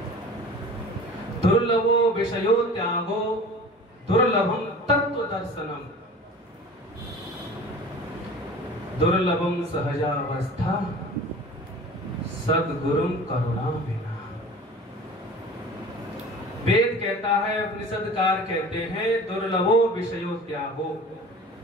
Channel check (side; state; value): both; normal; correlation 0.41